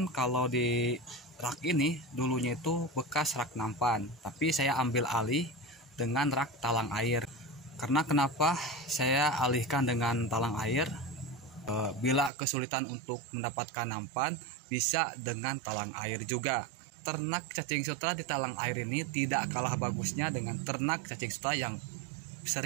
kalau di rak ini dulunya itu bekas rak nampan, tapi saya ambil alih dengan rak talang air. Karena kenapa saya alihkan dengan talang air? Bila kesulitan untuk mendapatkan nampan, bisa dengan talang air juga. Ternak cacing sutra di talang air ini tidak kalah bagusnya dengan ternak cacing sutra yang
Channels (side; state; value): left; drops out; at 12.3 s